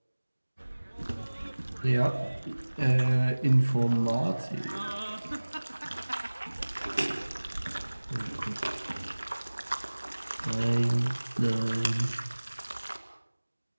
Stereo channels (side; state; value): both; inverted; correlation -1.00